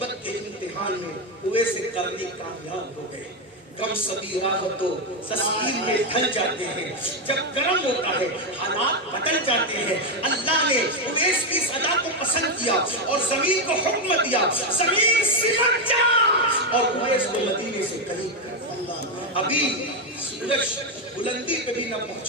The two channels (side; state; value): both; normal; correlation 0.07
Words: کے امتحان میں اویس کرنی کامیاب ہو گئے. کم سبھی راہ تو تسلیم میں ڈھل جاتے ہیں. جب کرم ہوتا ہے حالات بدل جاتے ہیں. اللہ نے اویس کی صدا کو پسند کیا اور زمین کو حکم دیا زمین سمٹ جا، اور اویس کو مدینے سے قریب کر. ابھی سورج بلندی پہ بھی نہ